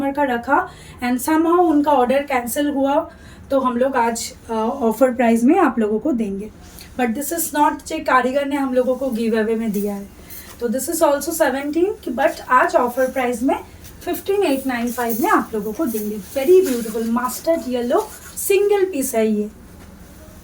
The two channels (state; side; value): identical; both; correlation 1.00